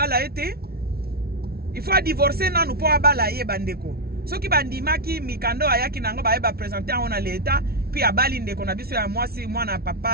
ete. Il faut divorcer nanu po abala ye bandeko. Soki bandimaki mikando ayaki nango ba présenter on a l'état puis abali ndeko na biso ya mwasi mwana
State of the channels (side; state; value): left; late; 0.44 ms